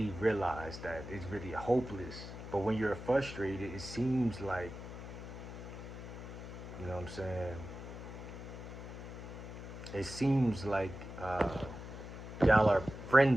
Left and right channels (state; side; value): noise; left; hum, 10 dB below the sound